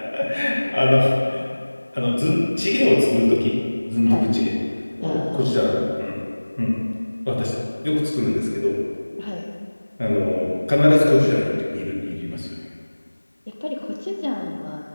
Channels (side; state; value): both; inverted; correlation -1.00